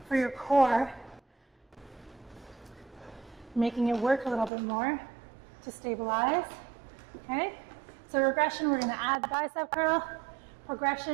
for your core, making it work a little bit more to stabilize, okay? So regression, we're gonna add the bicep curl.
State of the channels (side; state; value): left; drops out; at 4.5 s